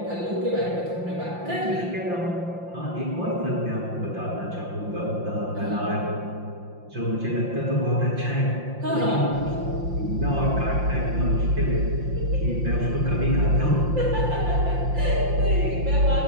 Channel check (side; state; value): left; late; 5.7 ms